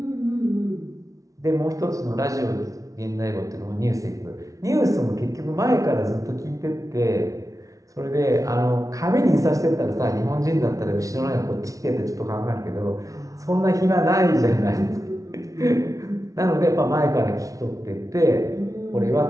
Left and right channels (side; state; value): left; late; 0.17 ms